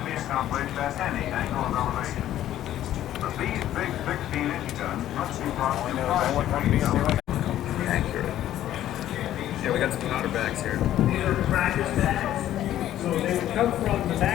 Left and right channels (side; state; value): right; quieter; 12.5 dB